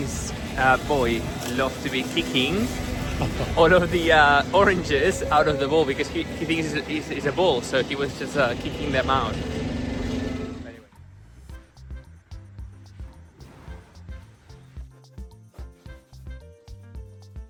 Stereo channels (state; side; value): identical; both; correlation 1.00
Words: boy loves to be kicking all of the oranges out of the bowl because he thinks it's a ball, so he was just kicking them out.